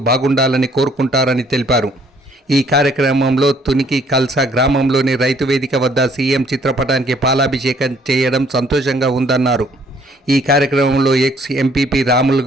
బాగుండాలని కోరుకుంటారని తెలిపారు. ఈ కార్యక్రమంలో తునికి కల్సా గ్రామంలోని రైతు వేదిక వద్ద సీఎం చిత్రపటానికి పాలాభిషేకం చేయడం సంతోషంగా ఉందన్నారు. ఈ కార్యక్రమంలో ex MPP Ramul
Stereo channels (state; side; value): normal; both; correlation 0.63